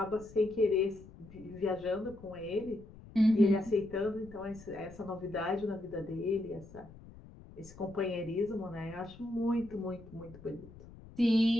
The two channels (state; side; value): noise; left; rumble, 19 dB below the sound